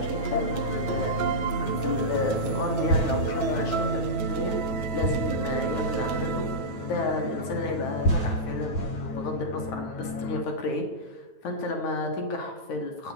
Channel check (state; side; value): late; right; 9.2 ms